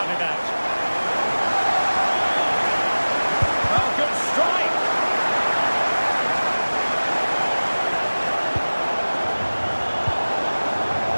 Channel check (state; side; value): inverted; both; correlation -1.00